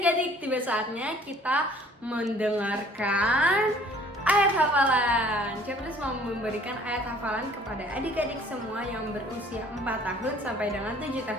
tiba saatnya kita mendengarkan ayat hafalan. Capres mau memberikan ayat hafalan kepada adik-adik semua yang berusia 4 tahun sampai dengan 7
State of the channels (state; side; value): normal; both; correlation 0.54